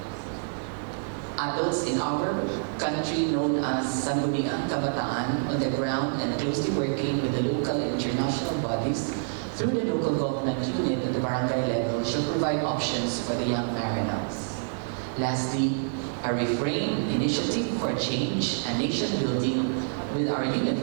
adults in our country known as Sangguniang Kabataan on the ground and closely working with the local and international bodies through the local government unit at the barangay level should provide options for the young Marinos. Lastly, a refrain initiative for change and nation building with our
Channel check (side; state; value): left; silent; 60 dB below the other